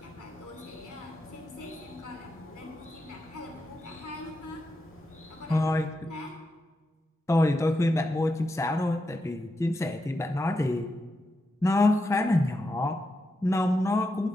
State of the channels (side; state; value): both; normal; correlation 0.86